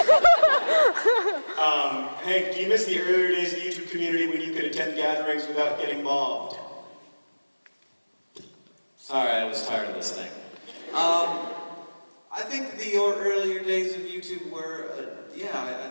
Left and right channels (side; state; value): both; inverted; correlation -1.00